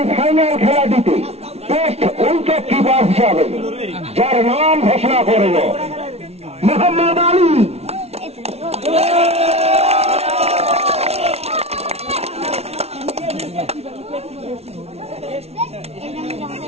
ফাইনাল খেলাটিতে টেস্ট উইকেট কিপার হিসাবে যার নাম ঘোষণা করল মোহাম্মদ আলী।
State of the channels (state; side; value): late; left; 0.31 ms